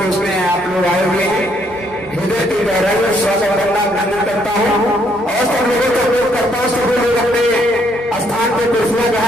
उसमें आप लोग आए हुए हैं, हृदय की गहराई में स्वागत करना अभिनंदन करता हूँ और सब लोगों को उपयोग करता हूँ। सभी लोग अपने स्थान पर कुर्सियां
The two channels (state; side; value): normal; both; correlation 0.70